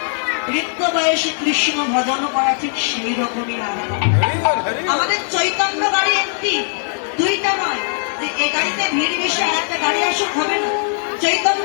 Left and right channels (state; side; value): silent; right; digital silence